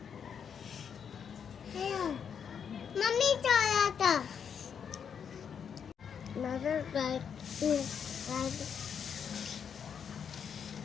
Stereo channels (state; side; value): quieter; right; 7.4 dB